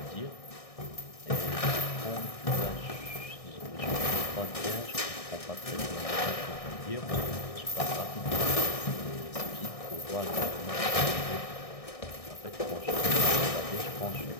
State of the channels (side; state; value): right; late; 1.6 ms